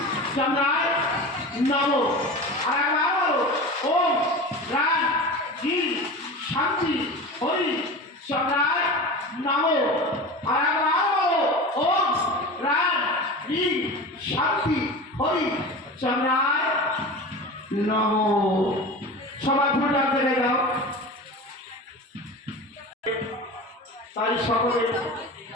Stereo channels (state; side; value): normal; both; correlation 0.31